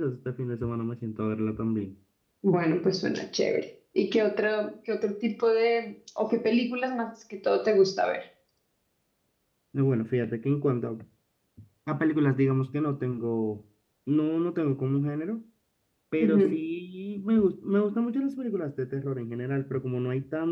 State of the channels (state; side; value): identical; both; correlation 1.00